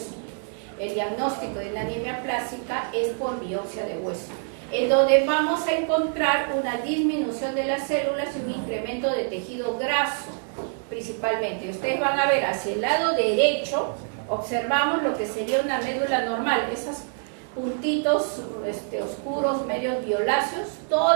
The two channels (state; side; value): silent; left; 61 dB below the other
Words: El diagnóstico de la anemia plástica es por biopsia de hueso, en donde vamos a encontrar una disminución de las células y un incremento de tejido graso, principalmente. Ustedes van a ver hacia el lado derecho, observamos lo que sería una médula normal, esas puntitos oscuros, medios violáceos,